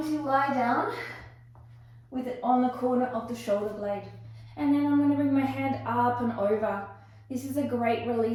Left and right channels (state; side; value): identical; both; correlation 1.00